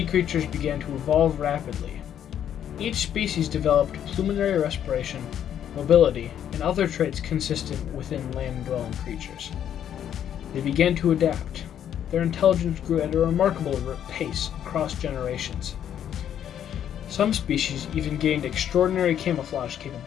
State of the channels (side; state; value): right; quieter; 9.8 dB